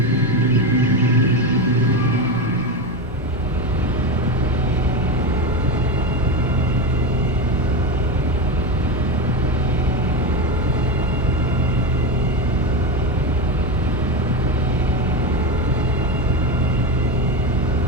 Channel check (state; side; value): normal; both; correlation 0.16